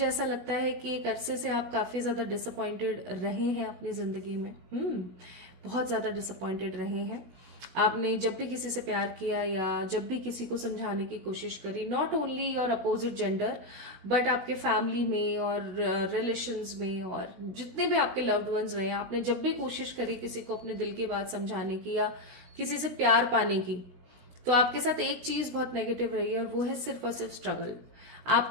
ऐसा लगता है कि एक अरसे से आप काफी ज्यादा डिसअपॉइंटेड रहे हैं अपनी जिंदगी में। बहुत ज्यादा डिसअपॉइंटेड रहे हैं। आपने जब भी किसी से प्यार किया या जब भी किसी को समझाने की कोशिश करी, not only your opposite gender but आपके फैमिली में और रिलेशंस में और जितने भी आपके लव्ड वंस रहे, आपने जब भी कोशिश करी किसी को अपने दिल की बात समझाने की या किसी से प्यार पाने की, तो आपके साथ एक चीज बहुत नेगेटिव रही है और वो है सिर्फ और सिर्फ स्ट्रगल।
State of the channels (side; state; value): left; late; 16 ms